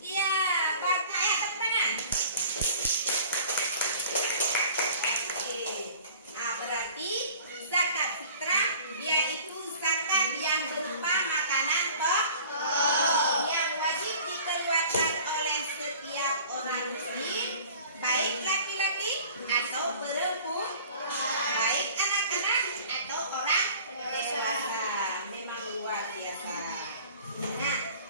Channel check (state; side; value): inverted; both; correlation -0.47